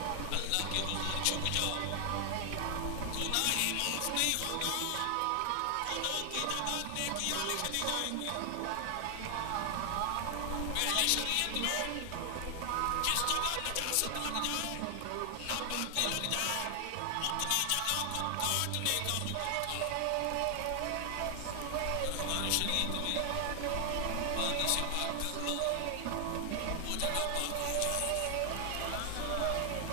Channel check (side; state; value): both; different; correlation 0.00